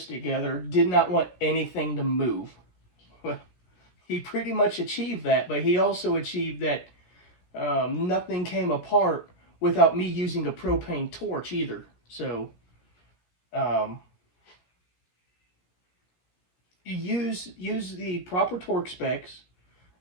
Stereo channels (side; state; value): right; late; 17 ms